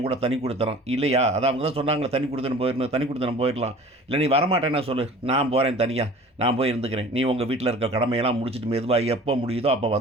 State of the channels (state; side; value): normal; both; correlation 0.44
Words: கூட தனி குடித்தனம். இல்லையா? அதான் அவங்க தான் சொன்னாங்களே தனி குடித்தனம் போயிரணும், தனி குடித்தனம் போயிரலாம். இல்ல நீ வரமாட்டேன்னா சொல்லு. நான் போறேன் தனியா. நான் போய் இருந்துக்கிறேன். நீ உங்க வீட்ல இருக்க கடமையெல்லாம் முடிச்சுட்டு மெதுவா எப்போ முடியுதோ அப்போ